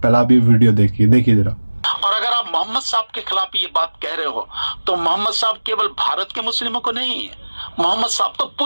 भी वीडियो देखिए जरा। और अगर आप मोहम्मद साहब के खिलाफ ये बात कह रहे हो तो मोहम्मद साहब केवल भारत के मुस्लिमों को नहीं है, मोहम्मद साहब तो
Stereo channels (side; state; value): both; inverted; correlation -1.00